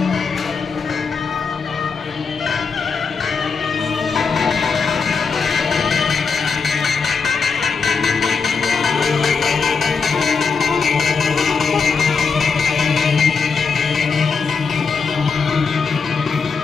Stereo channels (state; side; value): quieter; right; 5.3 dB